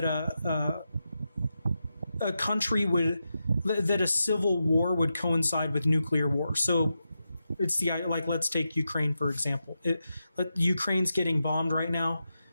a country that a civil war would coincide with nuclear war. So it's let's take Ukraine, for example. Ukraine's getting bombed right now,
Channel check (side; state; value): both; inverted; correlation -0.88